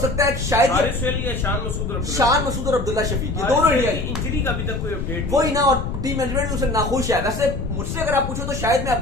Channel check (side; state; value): left; noise; rumble, 5 dB below the sound